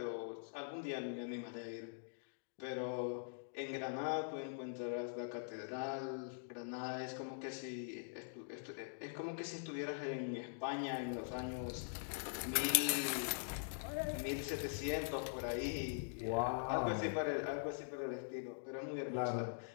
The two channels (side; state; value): right; silent; digital silence